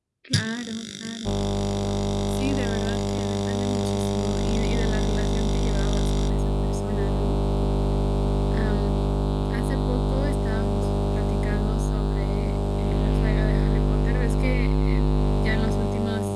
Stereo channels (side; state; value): both; identical; correlation 1.00